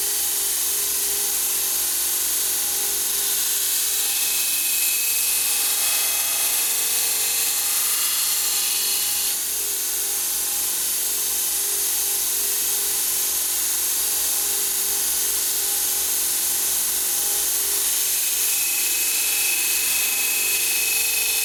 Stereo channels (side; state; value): both; identical; correlation 1.00